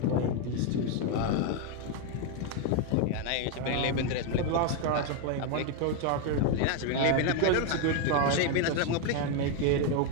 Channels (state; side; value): different; both; correlation 0.01